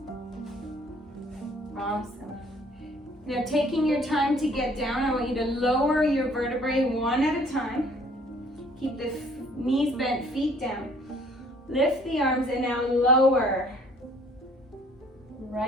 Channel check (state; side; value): normal; both; correlation 0.58